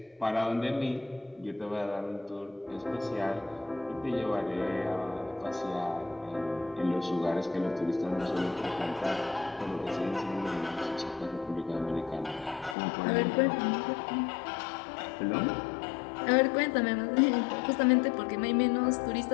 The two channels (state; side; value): drops out; right; at 12.8 s